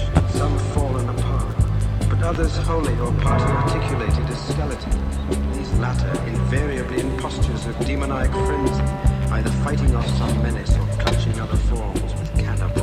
some fallen apart, but others wholly or partly articulated as skeletons, these latter invariably in postures of demoniac frenzy, either fighting off some menace or clutching other forms with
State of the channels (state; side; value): identical; both; correlation 1.00